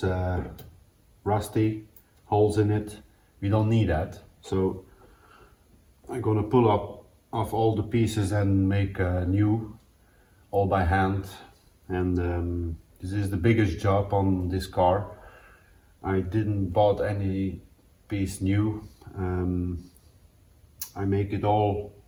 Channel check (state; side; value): identical; both; correlation 1.00